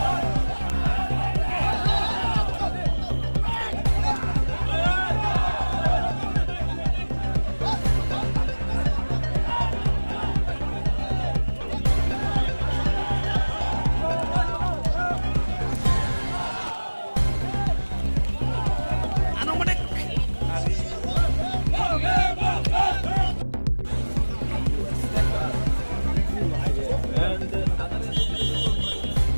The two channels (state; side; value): inverted; both; correlation -1.00